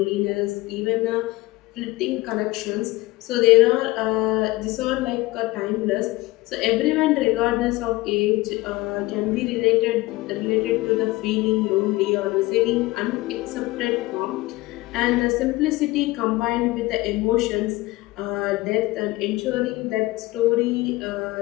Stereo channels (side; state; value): right; quieter; 19.7 dB